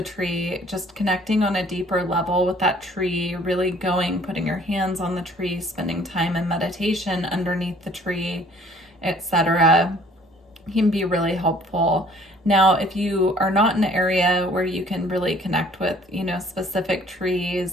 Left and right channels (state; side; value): normal; both; correlation 0.56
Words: tree, just connecting on a deeper level with that tree, really putting your hands on the tree, spending time in meditation underneath the tree, etc., can be really helpful. Now, if you are not in an area where you can really connect with, specific